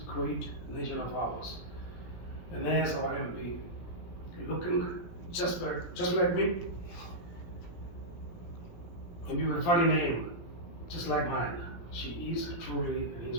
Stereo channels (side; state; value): right; late; 17 ms